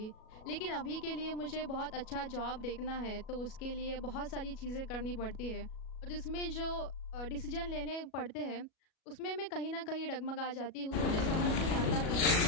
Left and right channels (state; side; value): late; right; 37 ms